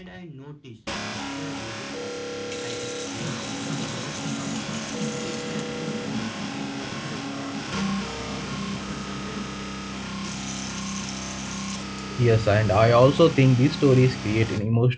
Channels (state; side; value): identical; both; correlation 1.00